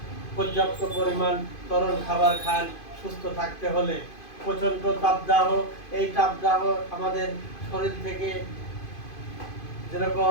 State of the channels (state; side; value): late; right; 2.5 ms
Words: পর্যাপ্ত পরিমাণ তরল খাবার খান সুস্থ থাকতে হলে। প্রচণ্ড তাপদাহ, এই তাপদাহ আমাদের শরীর থেকে